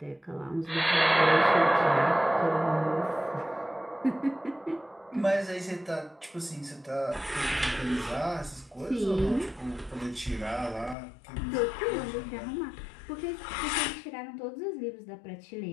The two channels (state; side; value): drops out; right; at 11.0 s